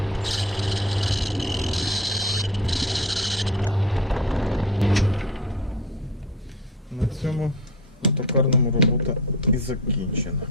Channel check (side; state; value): both; normal; correlation 0.32